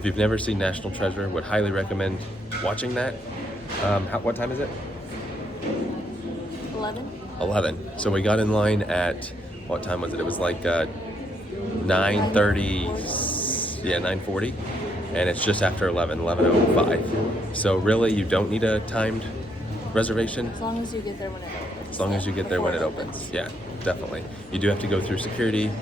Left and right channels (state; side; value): normal; both; correlation 0.74